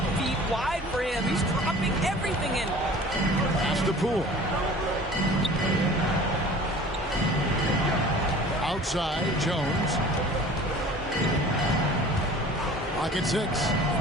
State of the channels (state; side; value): normal; both; correlation 0.45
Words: feet wide for him. He's dropping everything in. Pass to Poole. Outside, Jones. Pocket 6.